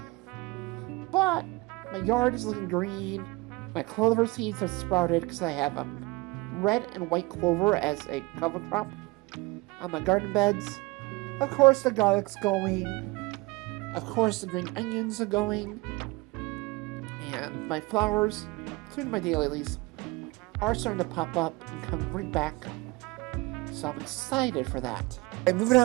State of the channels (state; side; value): quieter; left; 23.6 dB